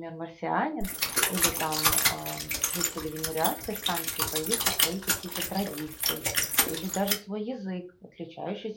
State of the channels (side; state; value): both; identical; correlation 1.00